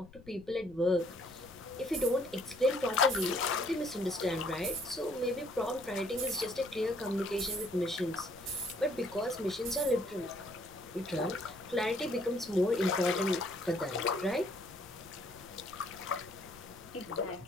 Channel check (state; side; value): noise; left; rumble, 21 dB below the sound